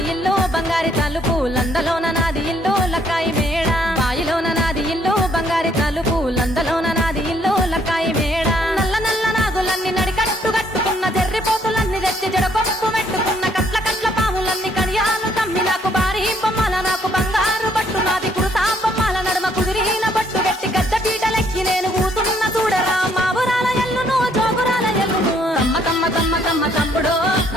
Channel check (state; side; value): normal; both; correlation 0.67